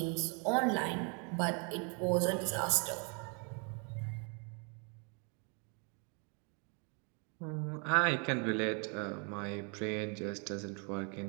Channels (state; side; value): quieter; left; 35.6 dB